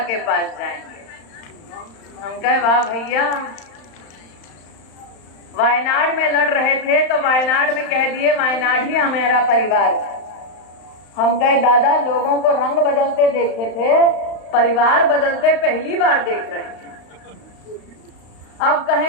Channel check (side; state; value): right; late; 35 ms